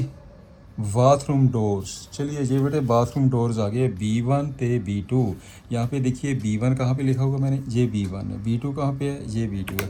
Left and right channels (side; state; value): both; identical; correlation 1.00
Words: bathroom doors. चलिए ये बेटे बाथरूम डोर्स आ गए B1 ते B2। यहाँ पे देखिए B1 कहाँ पे लिखा होगा मैंने, ये B1 है, B2 कहाँ पे है, ये B2 है।